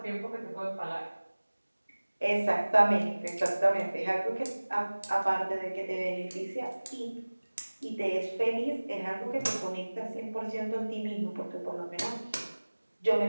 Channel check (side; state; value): both; inverted; correlation -1.00